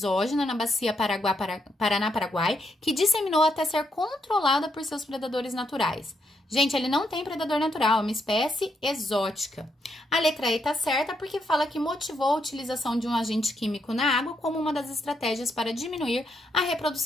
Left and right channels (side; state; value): both; normal; correlation 0.78